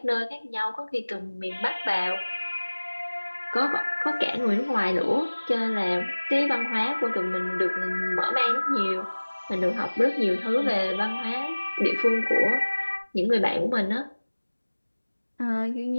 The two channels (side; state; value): both; inverted; correlation -1.00